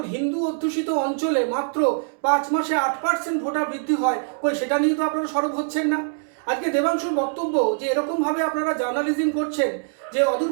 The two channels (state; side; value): silent; left; digital silence